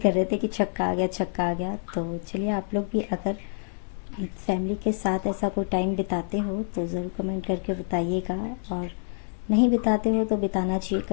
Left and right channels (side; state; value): right; silent; 60 dB below the other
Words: रहे थे कि छक्का आ गया छक्का आ गया। तो चलिए आप लोग भी अगर फैमिली के साथ ऐसा कोई टाइम बिताते हो तो ज़रूर कमेंट करके बताइएगा, और नहीं बिताते हो तो बिताना चाहिए,